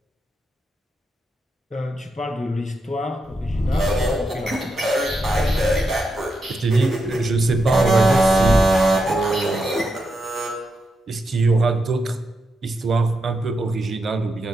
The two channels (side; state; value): both; normal; correlation 0.85